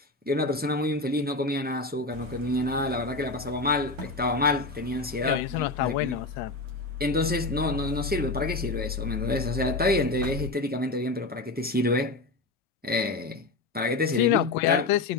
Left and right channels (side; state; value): right; quieter; 3.3 dB